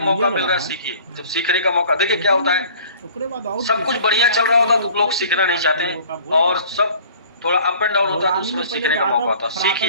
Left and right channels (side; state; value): both; inverted; correlation -0.49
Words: मौका मिल रहा है सीखिए। जब सीखने का मौका, देखिए क्या होता है, सब कुछ बढ़िया चल रहा होता तो लोग सीखना नहीं चाहते हैं, और सब थोड़ा अप एंड डाउन होता है तो उसमें सीखने का मौका होता है।